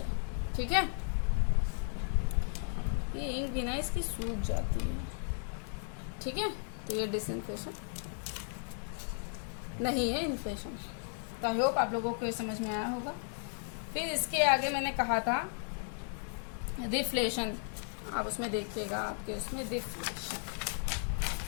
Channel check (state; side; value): silent; right; 54 dB below the other